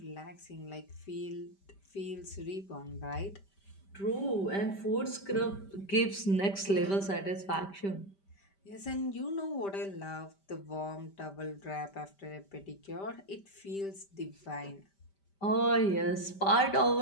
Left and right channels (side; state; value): right; late; 5.1 ms